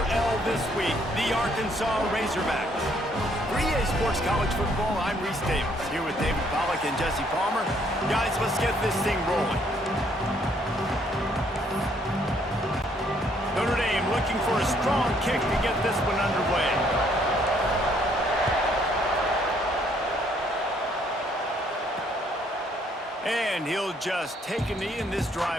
L this week, the Arkansas Razorbacks. For EA Sports College Football, I'm Reese Davis, here with David Pollack and Jesse Palmer. Guys, let's get this thing rolling. Notre Dame looking for a strong kick to get this one underway. And he'll just take a knee, and this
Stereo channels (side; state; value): both; normal; correlation 0.67